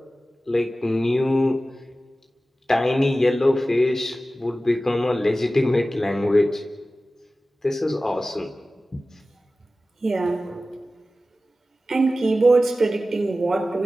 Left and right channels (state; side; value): normal; both; correlation 0.95